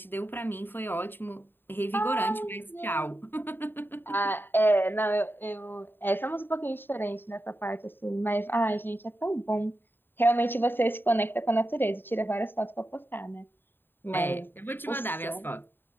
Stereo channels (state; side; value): late; right; 0.097 ms